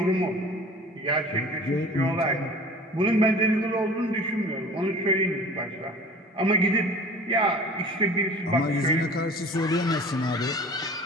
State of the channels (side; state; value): both; normal; correlation 0.43